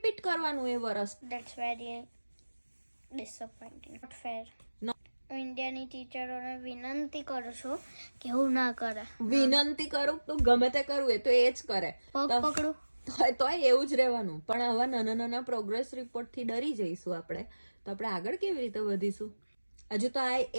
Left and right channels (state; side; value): inverted; both; correlation -1.00